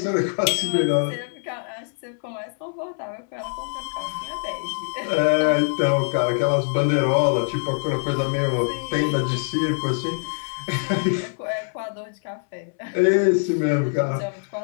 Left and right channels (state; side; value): silent; right; 63 dB below the other